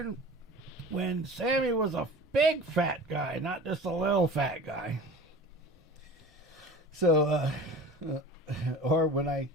Sammy was a big fat guy, not just a little fat guy. So, or when I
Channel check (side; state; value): both; normal; correlation 0.38